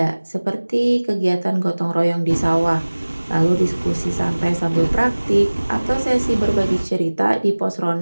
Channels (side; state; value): both; inverted; correlation -1.00